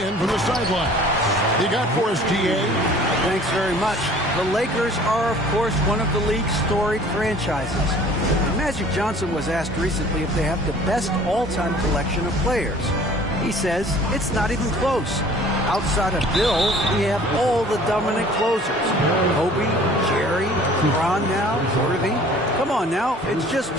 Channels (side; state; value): both; normal; correlation 0.50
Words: from the sideline. You got for us, DA? Thanks very much. The Lakers are, of course, one of the league's storied franchises. Magic Johnson was asked recently if they have the best all-time collection of players. He says it's not even close. Outside of Bill, we have all the dominant closers. Kobe, Jerry, Ron now, Irving. Come on now, it's just